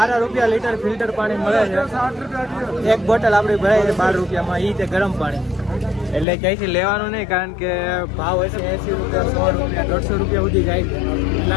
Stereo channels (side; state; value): right; drops out; at 6.2 s